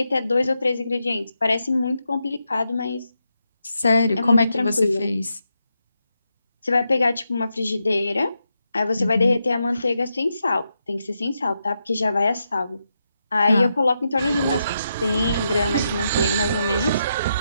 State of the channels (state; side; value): inverted; both; correlation -0.84